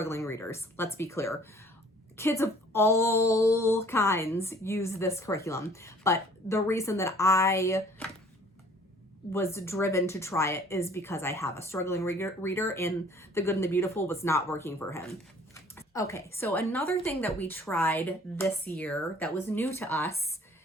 readers, let's be clear. Kids of all kinds use this curriculum. But the reason that I was driven to try it is because I have a struggling reader, and the Good and the Beautiful was not working for him. Okay, so another thing that we tried this year that was new to us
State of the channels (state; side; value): normal; both; correlation 0.54